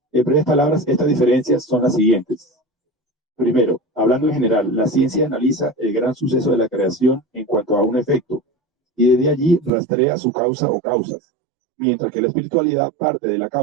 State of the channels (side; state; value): left; drops out; at 9.7 s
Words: En breves palabras, estas diferencias son las siguientes. Primero, hablando en general, la ciencia analiza el gran suceso de la creación en cuanto a un efecto, y desde allí rastrea su causa o causas, mientras que la espiritualidad parte de la